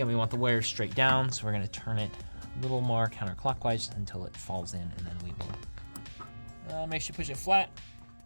we want the wires straight down, so we're gonna turn it a little more counterclockwise until it falls in, and then we will make sure you push it flat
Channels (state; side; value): inverted; both; correlation -1.00